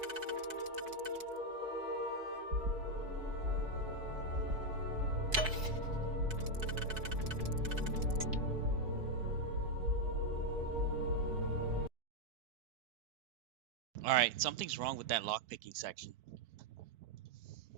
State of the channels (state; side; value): late; left; 4.6 ms